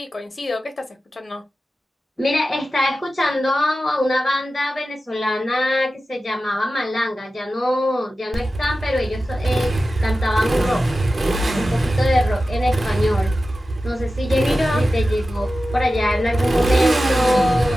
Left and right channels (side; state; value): both; normal; correlation 0.94